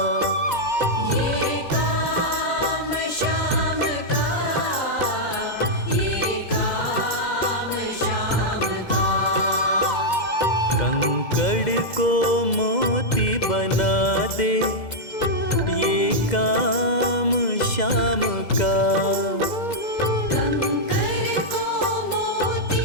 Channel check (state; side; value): late; right; 2.0 ms